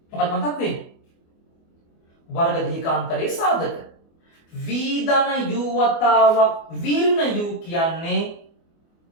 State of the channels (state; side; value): late; right; 24 ms